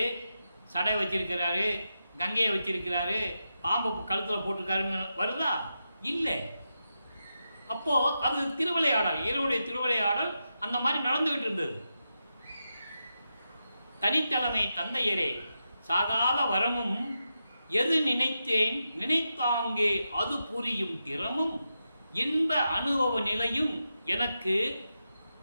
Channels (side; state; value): both; inverted; correlation -0.88